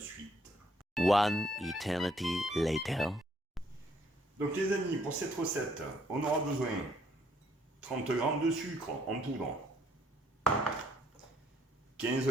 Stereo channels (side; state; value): both; normal; correlation 0.67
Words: One eternity later. Donc les amis, pour cette recette, on aura besoin 30 g de sucre en poudre, 15